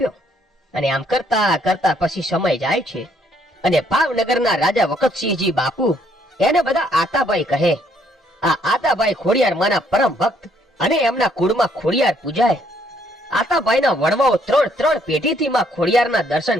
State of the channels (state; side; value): normal; both; correlation 0.68